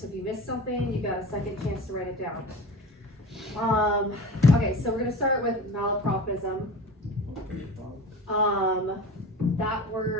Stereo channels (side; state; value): both; normal; correlation 0.34